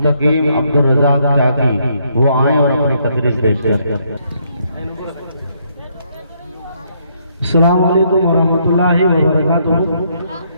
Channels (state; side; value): inverted; both; correlation -0.72